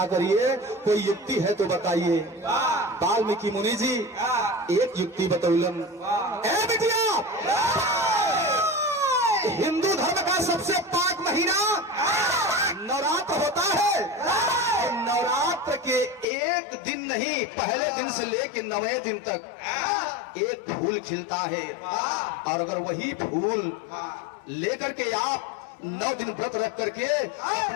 करिए, कोई युक्ति है तो बताइए। वाल्मीकि मुनि जी एक युक्ति बतौलन। ए बिटिया, हिंदू धर्म का सबसे पाक महीना नवरात्र होता है, और नवरात्र के एक दिन नहीं, पहले दिन से लेकर 9वें दिन तक एक फूल खिलता है, और अगर वही फूल लेकर के आप 9 दिन व्रत रख करके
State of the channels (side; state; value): right; drops out; at 16.2 s